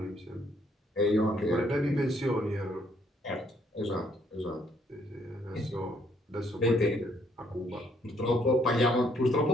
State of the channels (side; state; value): both; normal; correlation 0.68